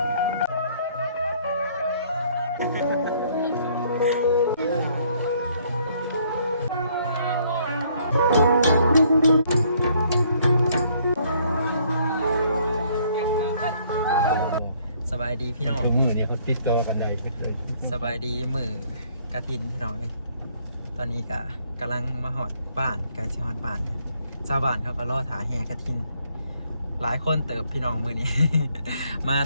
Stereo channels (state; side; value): inverted; both; correlation -0.65